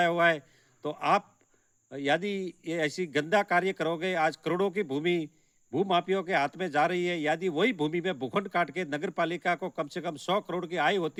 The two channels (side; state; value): both; identical; correlation 1.00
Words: हुआ है। तो आप यदि ये ऐसी गंदा कार्य करोगे, आज करोड़ों की भूमि भूमाफियाओं के हाथ में जा रही है। यदि वही भूमि में भूखंड काट के नगर पालिका को कम से कम 100 करोड़ की आय